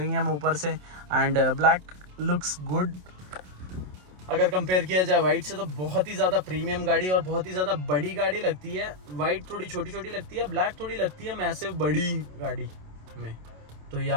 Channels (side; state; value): left; late; 27 ms